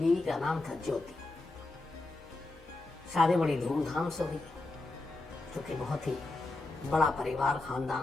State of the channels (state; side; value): quieter; right; 3.0 dB